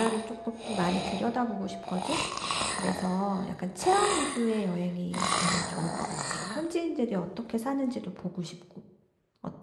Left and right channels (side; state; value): both; identical; correlation 1.00